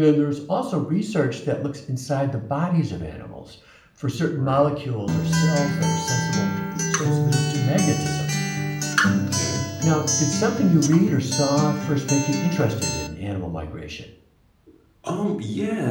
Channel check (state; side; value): identical; both; correlation 1.00